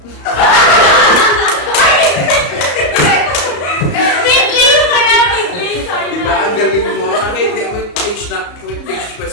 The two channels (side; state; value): right; late; 34 ms